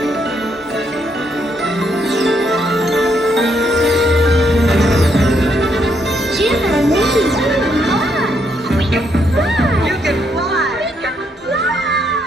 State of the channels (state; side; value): normal; both; correlation 0.75